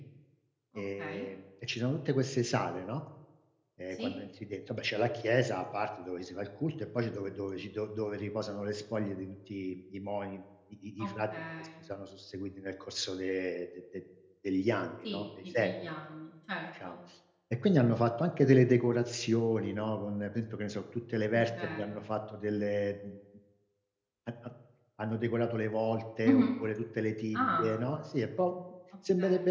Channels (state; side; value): identical; both; correlation 1.00